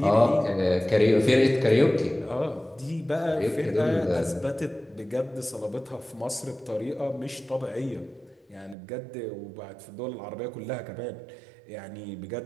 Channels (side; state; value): left; drops out; at 8.8 s